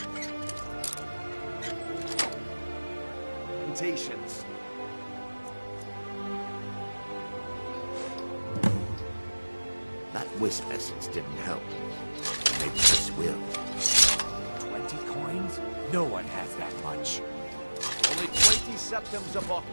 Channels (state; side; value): inverted; both; correlation -1.00